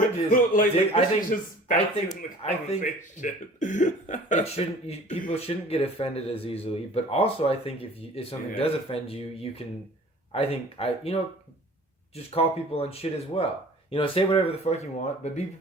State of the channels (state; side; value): normal; both; correlation 0.47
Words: is, I think it shouldn't. People shouldn't get offended as easily. But also, I think if something does offend you, you can. Just call people on shit as well. You know, say whatever the fuck you want, but be